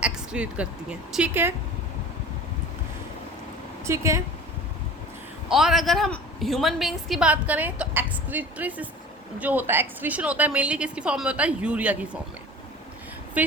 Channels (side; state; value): both; normal; correlation 0.40